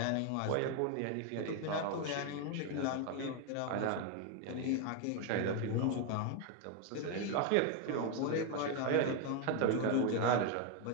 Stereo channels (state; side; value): different; both; correlation 0.01